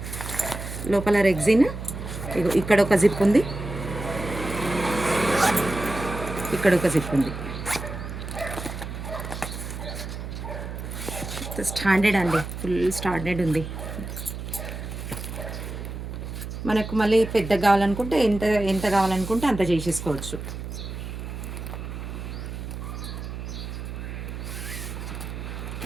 లోపల రెగ్జిన్. ఇగో ఇక్కడ ఒక జిప్ ఉంది, ఇక్కడ ఒక జిప్ ఉంది. స్టాండర్డ్ అండి, ఫుల్ స్టాండర్డ్ ఉంది. మనకు మళ్ళీ పెద్దగా కావాలనుకుంటే ఎంత ఎంత కావాలనుకుంటే అంత చేసేసుకోవచ్చు.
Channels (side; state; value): right; noise; hum, 7 dB below the sound